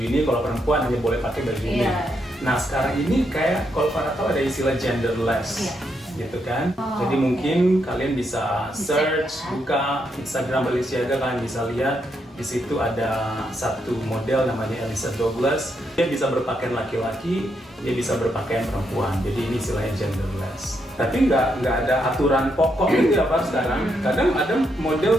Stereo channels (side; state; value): both; normal; correlation 0.79